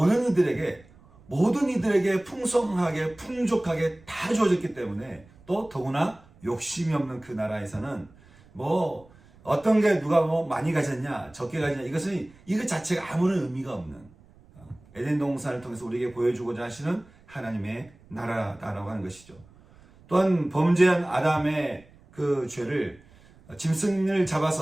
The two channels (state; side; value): noise; right; rumble, 26 dB below the sound